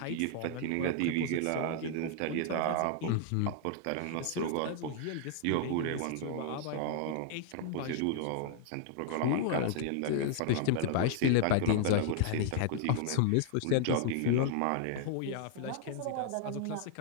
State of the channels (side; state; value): both; different; correlation -0.01